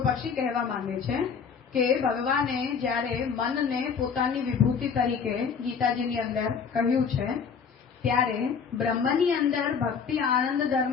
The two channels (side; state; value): right; quieter; 6.3 dB